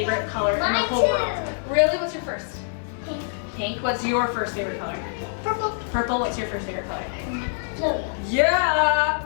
color in the Mine whole too. world. Really? What's your first? Pink. Pink. What's your first favorite color? Purple. Purple. What's your first favorite color? Blue. Yeah!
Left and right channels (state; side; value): silent; right; digital silence